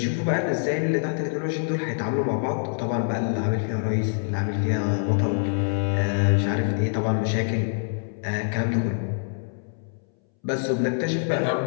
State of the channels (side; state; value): right; silent; 62 dB below the other